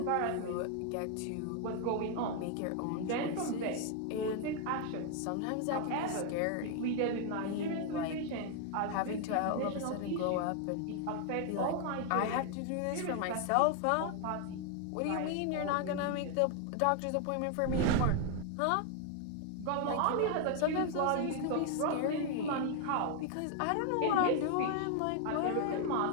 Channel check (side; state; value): both; different; correlation 0.00